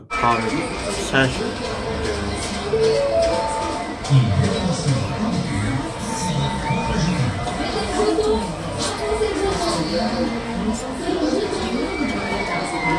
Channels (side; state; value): both; identical; correlation 1.00